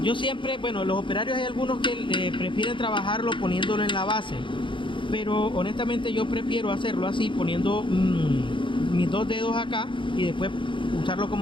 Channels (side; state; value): right; late; 0.24 ms